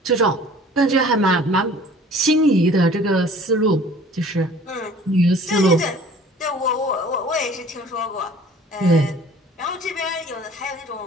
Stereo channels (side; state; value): both; normal; correlation 0.49